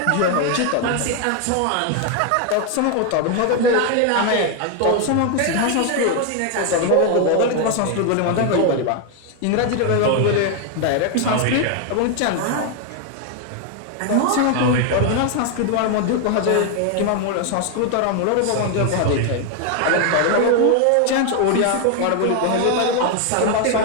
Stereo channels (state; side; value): different; both; correlation 0.01